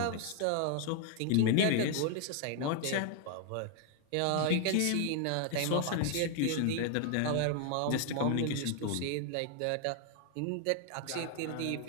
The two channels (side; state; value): both; different; correlation 0.00